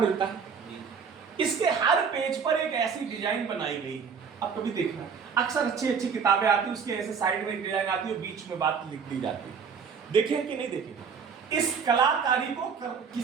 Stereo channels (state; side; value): quieter; left; 6.2 dB